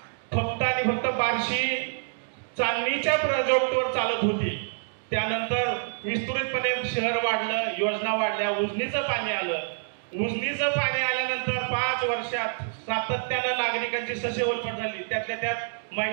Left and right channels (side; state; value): left; silent; digital silence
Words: फक्त आणि फक्त बार्शी चांदणीच्या प्रोजेक्टवर चालत होती. त्यानंतर विस्तृतपणे शहर वाढलं, योजना वाढल्या, उजनीचं पाणी आलं. उजनीचं पाणी आल्यानंतर 5 वर्षात सातत्यानं नागरिकांची ससेवलपट झाली. त्यातल्या त्यात